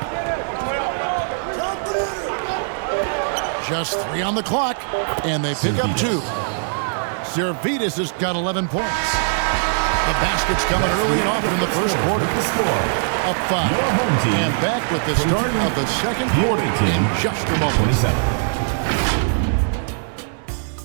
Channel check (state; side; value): silent; left; 65 dB below the other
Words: Just 3 on the clock, and they pick up 2. Servetus has got 11 points. The basket's coming early and often in the first quarter. Up 5. And back with the start of the second quarter in just a moment.